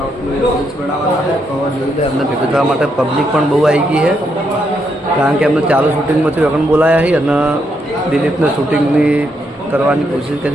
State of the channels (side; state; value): both; normal; correlation 0.78